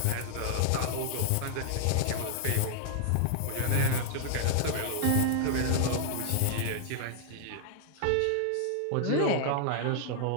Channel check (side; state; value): both; different; correlation 0.00